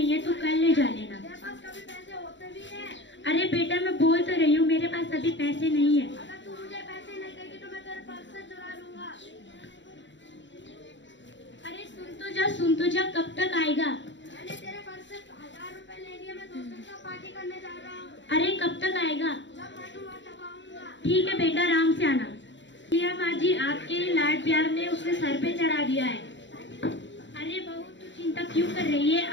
है, तू कल ले जा लेना। मेरे पास कभी पैसे होते भी हैं। अरे बेटा, मैं बोल तो रही हूँ, मेरे पास अभी पैसे नहीं है। अगर तू मुझे पैसे नहीं देगी तो मैं तेरे पर्स से चुरा लूंगा। अरे सुन तो जा, कब तक आएगा? मैंने तेरे पर्स से 1000 रुपए ले लिए, मैं दोस्तों के साथ पार्टी करने जा रहा हूँ। अरे कब तक आएगा? जब बैठूंगा तब आऊंगा। ठीक है बेटा, आराम से आना। लिया माँ जी, आपके लाड प्यार ने उसने सर पे चढ़ा दिया है। अरे बहू, तू चिंता क्यों कर रही है?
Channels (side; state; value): right; late; 0.53 ms